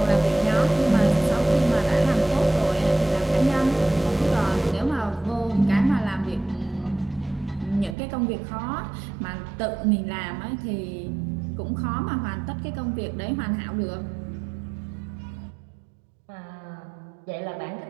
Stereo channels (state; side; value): drops out; left; at 8.0 s